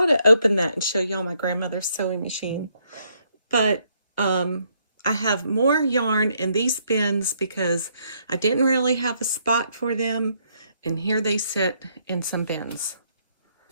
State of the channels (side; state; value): both; inverted; correlation -0.72